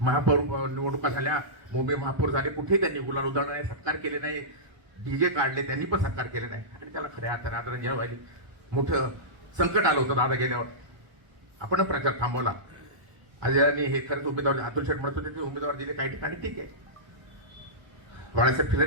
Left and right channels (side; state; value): left; late; 1.2 ms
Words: निवडणुका झाल्या, मुंबई महापौर झाले, कुठेही त्यांनी गुलाल उधळला नाही, सत्कार केले नाही, डीजे काढले, त्यांनी पण सत्कार केले नाही. आणि त्याला खऱ्या अर्थाने आदरांजली व्हायली. मोठं संकट आलं होतं दादा गेल्यावर, आपण प्रचार थांबवला. अजयने हे खरंच उमेदवार, अतुल शेठ म्हणत होते ते उमेदवार दिले काही ठिकाणी, ठीक आहे. बाळासाहेब